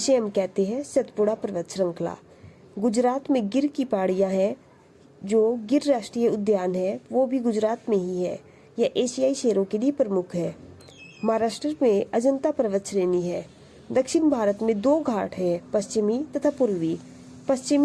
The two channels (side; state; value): both; identical; correlation 1.00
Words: हम कहते हैं सतपुड़ा पर्वत श्रृंखला। गुजरात में गिर की पहाड़ियां हैं। जो गिर राष्ट्रीय उद्यान है वो भी गुजरात में ही है। यह एशियाई शेरों के लिए प्रमुख है। महाराष्ट्र में अजंता पर्वत श्रेणी है। दक्षिण भारत में 2 घाट है, पश्चिमी तथा पूर्वी।